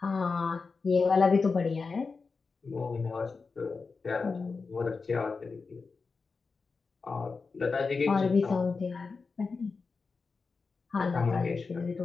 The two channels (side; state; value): right; quieter; 4.5 dB